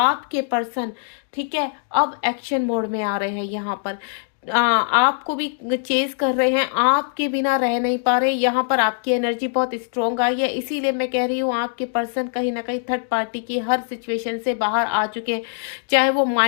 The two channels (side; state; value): right; silent; digital silence